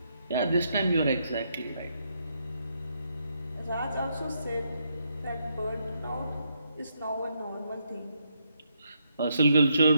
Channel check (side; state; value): both; inverted; correlation -0.77